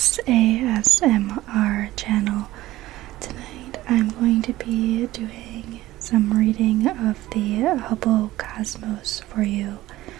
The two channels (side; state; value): left; quieter; 16.4 dB